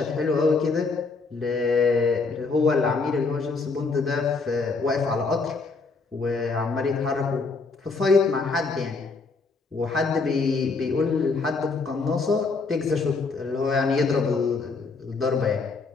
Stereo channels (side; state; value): right; quieter; 4.2 dB